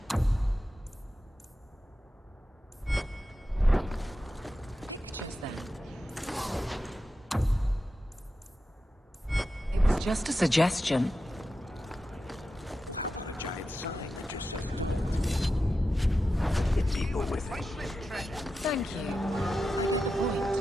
Just then. It was just a suggestion. Thank you.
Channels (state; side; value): normal; both; correlation 0.91